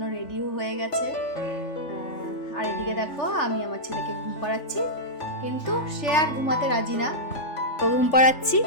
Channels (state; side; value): late; right; 3.4 ms